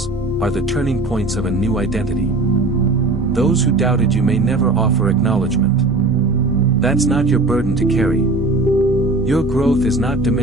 are the turning points of a new identity. Those who doubted you may never offer acknowledgement. That's not your burden to carry. Your growth is not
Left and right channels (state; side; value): quieter; left; 3.0 dB